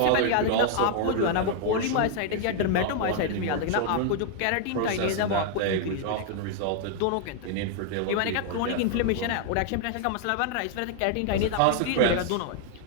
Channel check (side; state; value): both; different; correlation 0.00